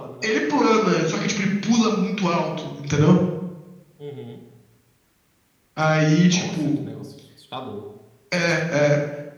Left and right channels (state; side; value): identical; both; correlation 1.00